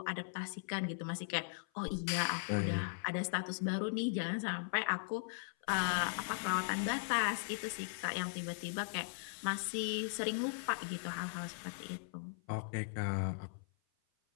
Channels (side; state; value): right; silent; 52 dB below the other